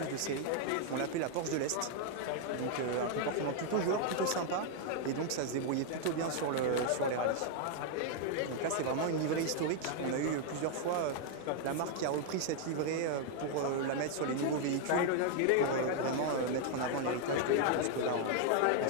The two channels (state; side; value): different; both; correlation 0.00